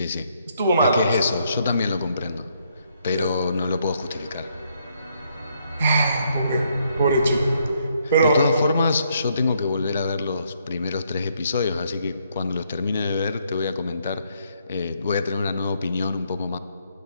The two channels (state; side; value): inverted; both; correlation -0.72